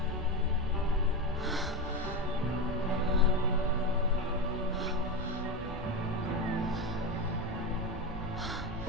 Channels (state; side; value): normal; both; correlation 0.16